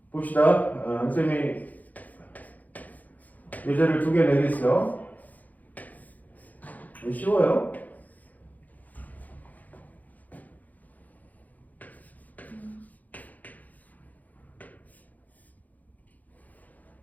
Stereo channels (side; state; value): right; late; 0.080 ms